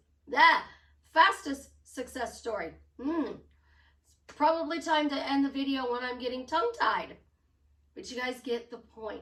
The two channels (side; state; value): both; identical; correlation 1.00